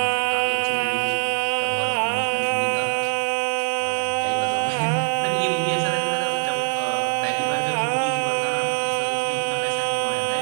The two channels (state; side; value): silent; left; digital silence